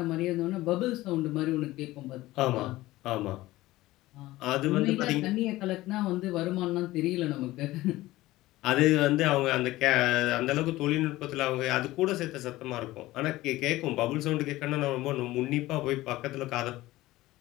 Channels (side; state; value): right; quieter; 17.5 dB